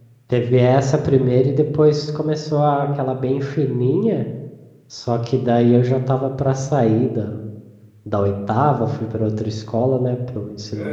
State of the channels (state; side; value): identical; both; correlation 1.00